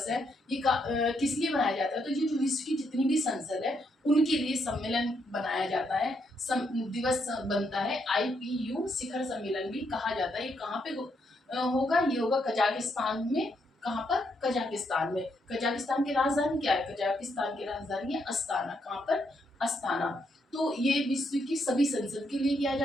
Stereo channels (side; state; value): both; normal; correlation 0.77